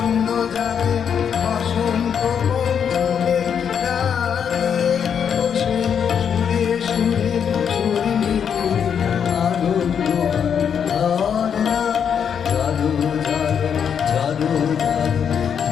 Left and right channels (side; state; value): right; quieter; 7.7 dB